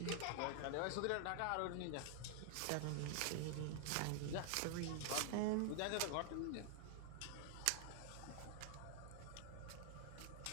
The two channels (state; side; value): different; both; correlation 0.00